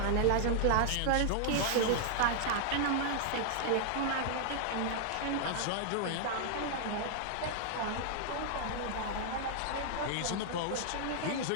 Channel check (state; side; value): different; both; correlation -0.01